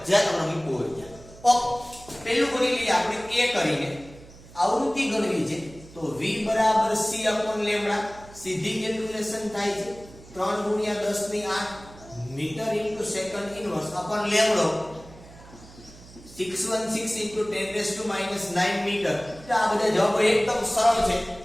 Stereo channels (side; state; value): right; noise; hum, 20 dB below the sound